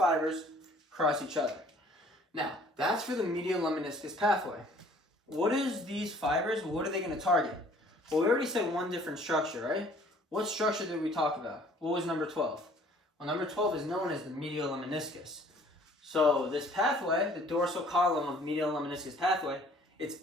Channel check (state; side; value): normal; both; correlation 0.55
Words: cross each other. Now, that's for the medial lemniscus pathway. What is these fibers? What are they going to target? Well, we already said one different structure, right? What structure did we talk about? What was number 12? Well, number 12 is known as the medial lemniscus. So this pathway, the dorsal column of medial lemniscus pathway, its